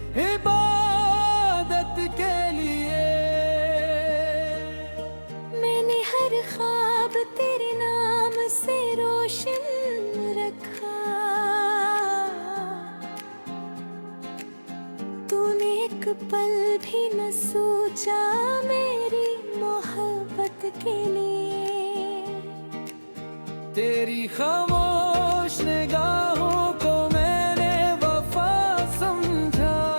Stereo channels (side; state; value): both; inverted; correlation -1.00